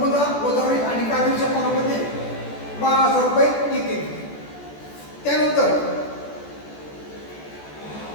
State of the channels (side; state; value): right; late; 14 ms